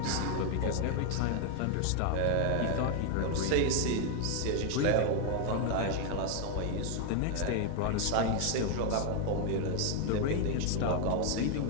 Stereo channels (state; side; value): different; both; correlation 0.00